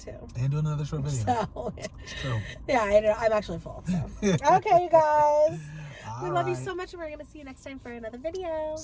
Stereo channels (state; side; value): identical; both; correlation 1.00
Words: So, it's true. Yeah, I'm actually full. So. Okay, you guys. We love you so much, and we're going to see you next time for another video.